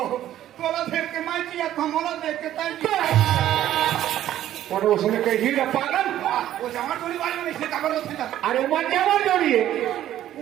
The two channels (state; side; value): quieter; left; 12.4 dB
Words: तोला देख के मैं किया कमला देख के तय और उसने कही रे पागल वो जवान जोड़ी वाले में इसलिए खबर होती था अरे मन जवान जोड़िए